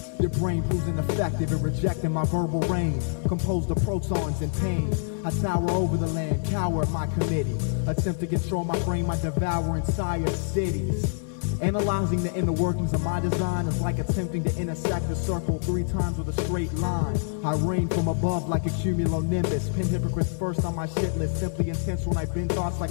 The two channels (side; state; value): right; silent; 58 dB below the other